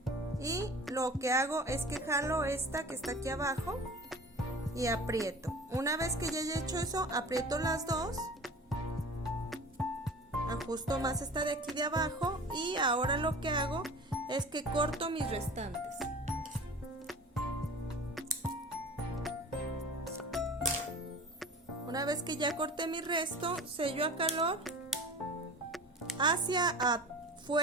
Y lo que hago es que jalo esta que está aquí abajo y aprieto. Una vez que ya haya hecho eso, aprieto las dos. Ajusto más esta de aquí de abajo y ahora lo que hago es que corto mis restantes. Una vez que ya corté mi resto, sello a calor hacia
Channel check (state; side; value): normal; both; correlation 0.39